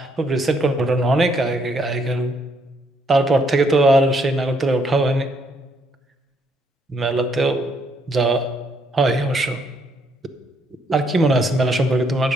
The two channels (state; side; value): normal; both; correlation 0.71